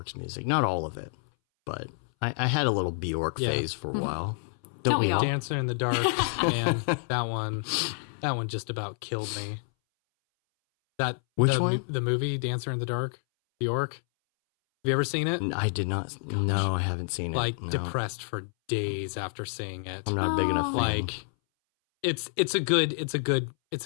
music. Not all of it, but I had a little Bjork phase for a while. Don't we all? Dancer in the Dark, man, that one just about killed me. Which one? The movie Dancer in the Dark, Bjork. Have you ever seen it? I did not. No, I haven't seen it. Like No. depressed for days after seeing it. I'm not a big enough fan. Like it's a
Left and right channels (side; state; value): right; silent; 59 dB below the other